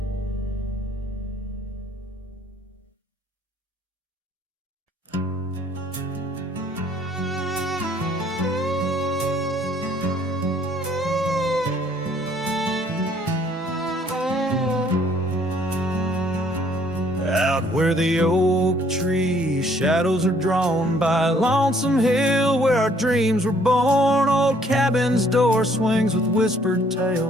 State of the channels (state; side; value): normal; both; correlation 0.62